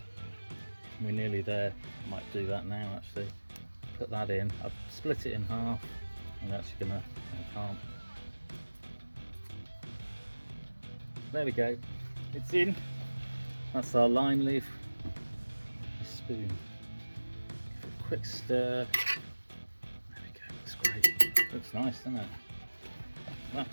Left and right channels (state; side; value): inverted; both; correlation -1.00